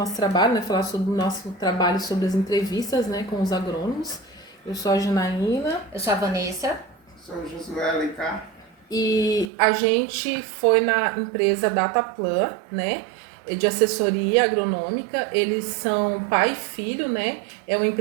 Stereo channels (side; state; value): left; drops out; at 9.5 s